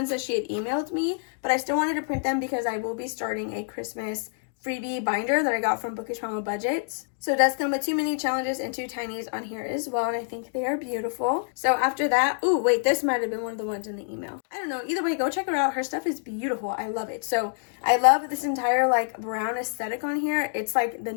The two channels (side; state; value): right; silent; digital silence